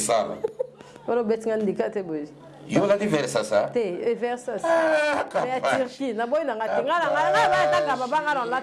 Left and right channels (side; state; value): both; identical; correlation 1.00